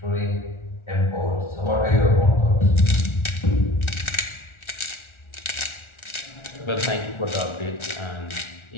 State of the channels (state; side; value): late; right; 1.4 ms